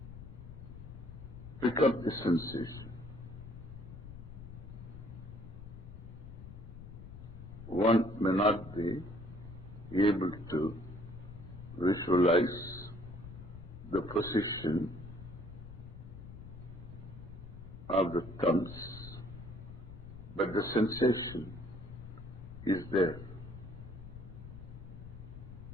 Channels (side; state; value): left; noise; rumble, 13 dB below the sound